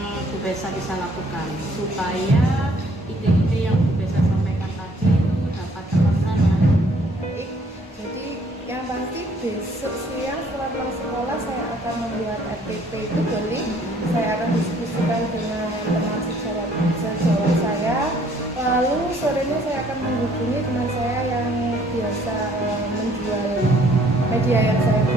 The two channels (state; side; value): normal; both; correlation 0.61